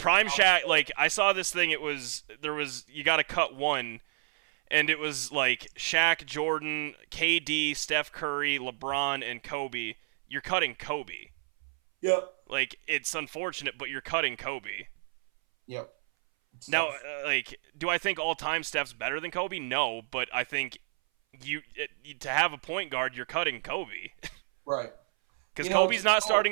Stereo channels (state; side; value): silent; left; 58 dB below the other